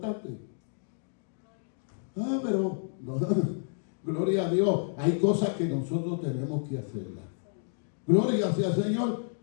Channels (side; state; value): right; silent; digital silence